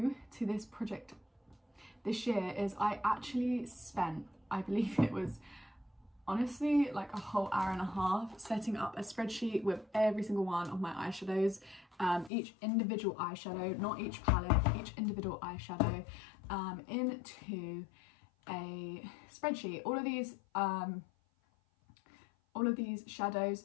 to this project this year is I actually spent, I believe it was honestly like a whole hour and a half setting up a spreadsheet with every single one of my eyeshadows, each individual eyeshadow, not each palette, each individual eyeshadow, into a spreadsheet. All of these shadows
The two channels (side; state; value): right; drops out; at 12.3 s